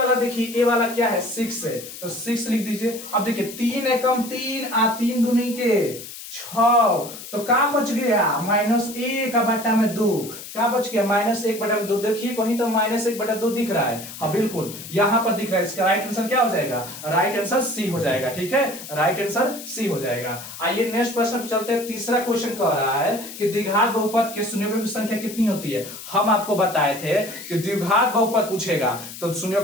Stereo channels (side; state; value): left; noise; hiss, 12 dB below the sound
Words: देखिए, ए वाला क्या है 6 है, तो 6 लिख दीजिए। अब देखिए 3 एकम 3 आ 3 दूनी के 6, तो क्या बच गया -1/2, क्या बच गया -1/2। देखिए कहीं तो -1/2 दिख रहा है, हाँ बिल्कुल यहां पर दिख रहा है। इसका राइट आंसर क्या हो जाएगा, राइट आंसर सी हो जाएगा, ठीक है, राइट आंसर सी हो जाएगा। आइए नेक्स्ट प्रश्न पर चलते हैं। तीसरा क्वेश्चन कह रहा है कि द्विघात बहुपद के शून्यकों की संख्या कितनी होती है। हम आपको बताए थे कि द्विघात बहुपद पूछेगा तो